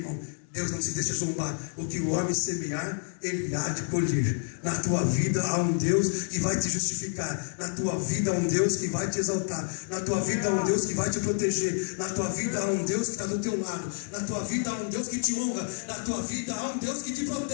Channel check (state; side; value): silent; right; 59 dB below the other